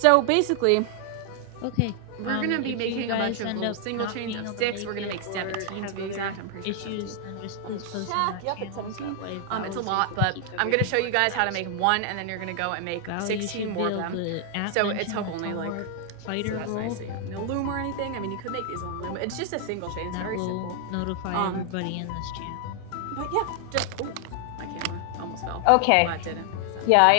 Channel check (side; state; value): both; different; correlation 0.00